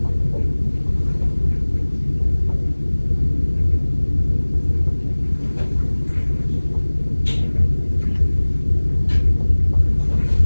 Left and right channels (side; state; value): both; inverted; correlation -1.00